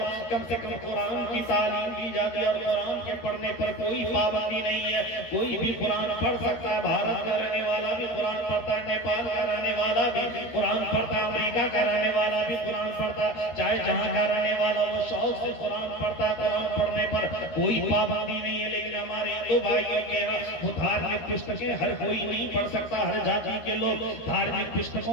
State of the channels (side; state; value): right; late; 13 ms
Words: کم سے کم قرآن کی تعلیم دی جاتی ہے اور قرآن کے پڑھنے پر کوئی پابندی نہیں ہے. کوئی بھی قرآن پڑھ سکتا ہے, بھارت کا رہنے والا بھی قرآن پڑھتا ہے, نیپال کا رہنے والا بھی قرآن پڑھتا ہے, امریکہ کا رہنے والا بھی قرآن پڑھتا ہے, چاہے جہاں کا رہنے والا وہ شوق سے قرآن پڑھتا ہے. قرآن پڑھنے پر کوئی پابندی نہیں ہے, لیکن ہمارے ہندو بھائیوں کے وہ دھارمک پستکیں ہر کوئی نہیں پڑھ سکتا, ہر جاتی کے لوگ دھارمک